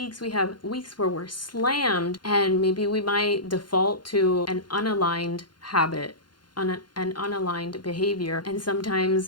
We have weeks where we're slammed, and maybe we might default to an unaligned habit, an unaligned behavior. And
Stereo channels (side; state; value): right; late; 0.71 ms